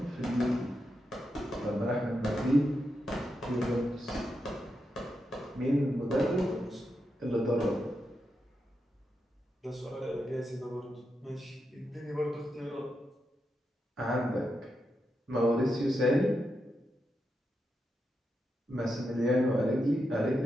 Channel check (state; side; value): normal; both; correlation 0.86